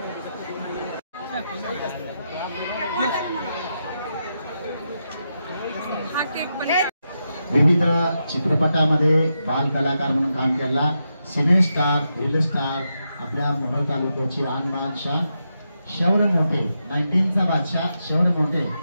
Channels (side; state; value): both; inverted; correlation -0.86